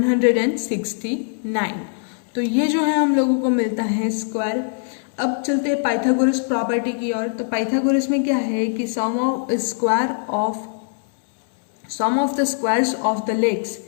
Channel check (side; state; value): right; silent; 65 dB below the other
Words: तो ये जो है हम लोगों को मिलता है स्क्वायर। अब चलते हैं पाइथागोरस प्रॉपर्टी की ओर। तो पाइथागोरस में क्या है कि sum of the squares of the legs